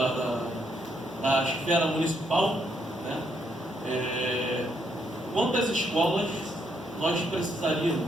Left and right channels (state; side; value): normal; both; correlation 0.75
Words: esfera municipal, né? Quantas escolas nós